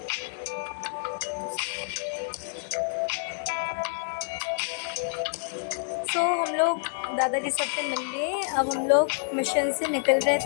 तो हम लोग दादाजी सबसे मिल लिए। अब हम लोग मिशन से निकल रहे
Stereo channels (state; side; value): silent; right; digital silence